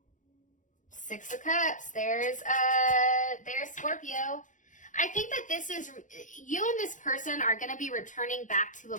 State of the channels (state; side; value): late; right; 0.37 ms